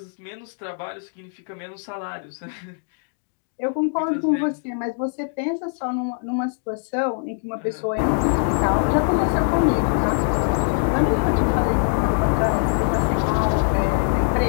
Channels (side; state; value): right; silent; 59 dB below the other